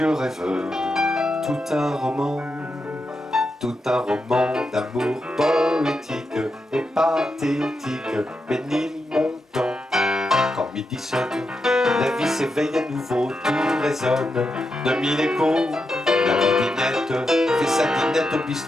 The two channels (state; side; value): normal; both; correlation 0.86